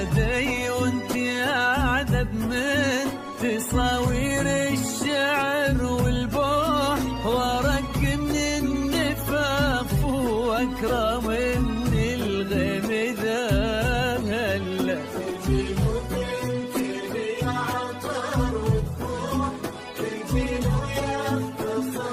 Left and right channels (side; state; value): both; identical; correlation 1.00